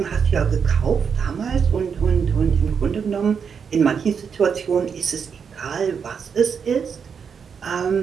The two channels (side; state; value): left; quieter; 6.6 dB